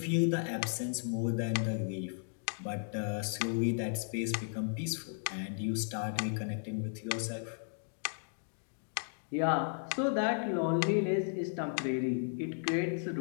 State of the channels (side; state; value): right; silent; digital silence